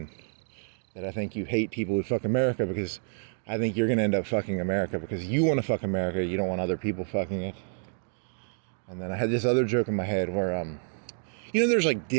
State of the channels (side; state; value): left; silent; digital silence